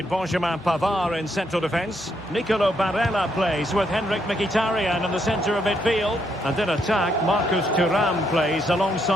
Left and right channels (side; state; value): both; normal; correlation 0.76